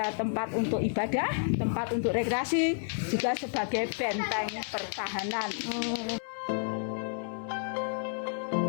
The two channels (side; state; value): right; silent; digital silence